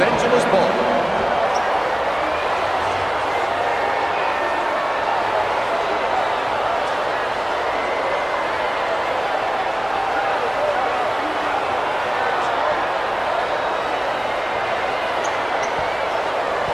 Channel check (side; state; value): left; noise; hum, 28 dB below the sound